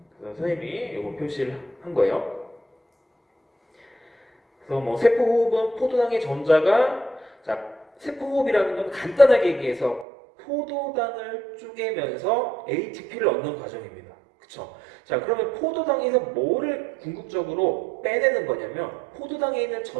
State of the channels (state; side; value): drops out; left; at 10.1 s